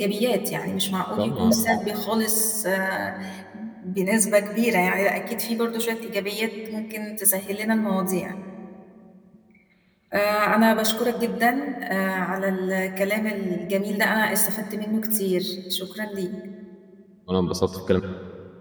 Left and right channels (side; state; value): both; identical; correlation 1.00